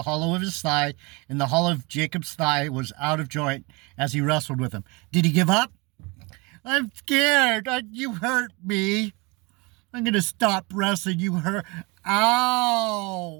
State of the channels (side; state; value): left; quieter; 27.4 dB